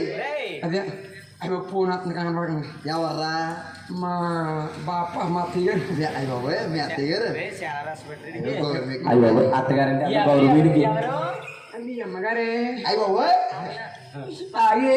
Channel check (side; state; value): both; identical; correlation 1.00